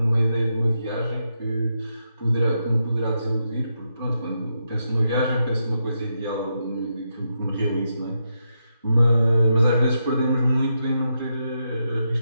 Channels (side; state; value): both; inverted; correlation -0.83